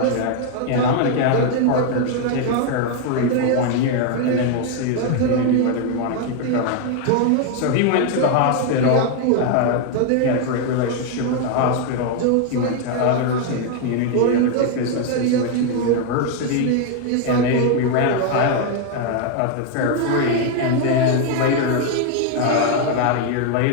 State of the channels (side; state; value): both; different; correlation 0.00